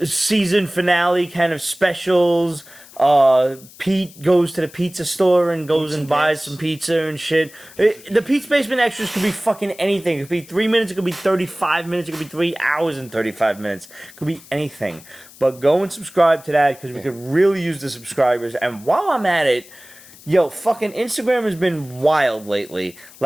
season finale kind of specials. Pete goes to the pizza store and goes and buys some pizza and shit. The Pete's Basement Extras could be fucking anything. It could be 3 minutes, it could be 35 minutes, it could be 3 hours and 35 minutes. It could be anything. But go and subscribe to that because we could really use the subscribers. And while I'm at it, yo, fucking Instagram has been wild lately.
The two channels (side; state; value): left; noise; hiss, 22 dB below the sound